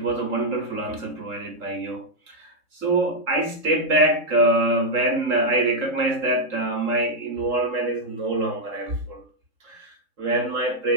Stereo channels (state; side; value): late; left; 3.7 ms